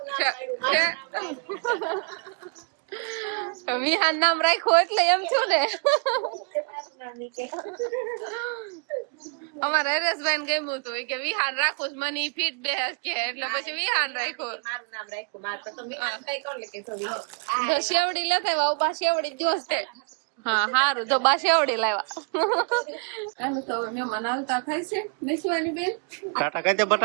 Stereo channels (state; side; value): quieter; left; 39.6 dB